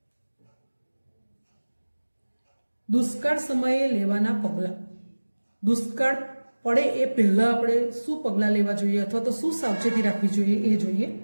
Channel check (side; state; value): both; inverted; correlation -1.00